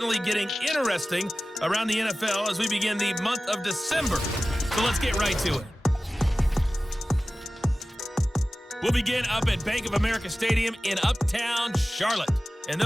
getting interesting around the NFL as we begin the month of December. So let's get right to it. We'll begin up at Bank of America Stadium in Uptown Charlotte. And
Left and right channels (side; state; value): both; normal; correlation 0.96